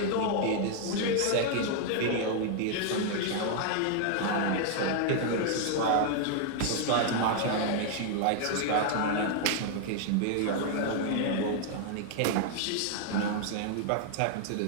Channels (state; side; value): different; both; correlation 0.00